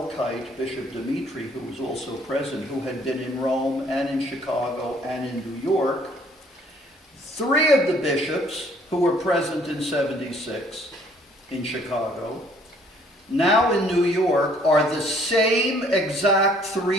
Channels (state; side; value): normal; both; correlation 0.60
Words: Bishop Dimitri, who was also present, who had been in Rome and in Chicago and in New York, 3 of the bishops who were present in 76 in Chicago, now in New York, are the same exact